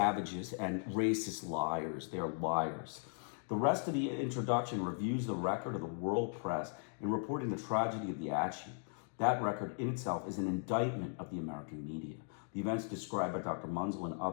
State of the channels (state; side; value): silent; right; 53 dB below the other